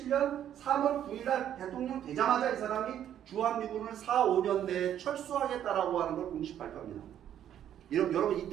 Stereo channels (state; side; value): quieter; left; 10.4 dB